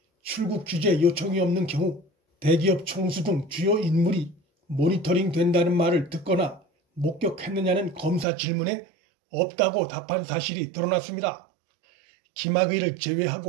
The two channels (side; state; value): left; drops out; at 8.2 s